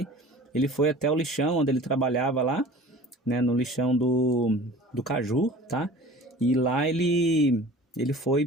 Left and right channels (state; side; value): normal; both; correlation 0.43